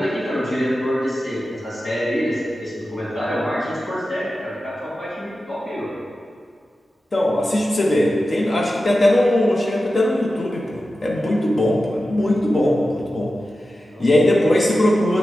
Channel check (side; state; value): both; normal; correlation 0.93